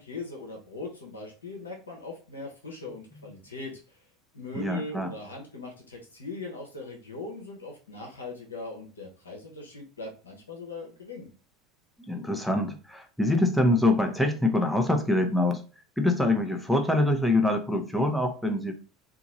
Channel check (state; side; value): normal; both; correlation 0.63